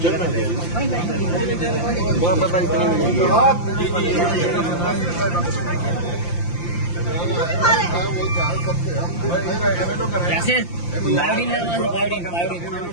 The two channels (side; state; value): right; late; 5.8 ms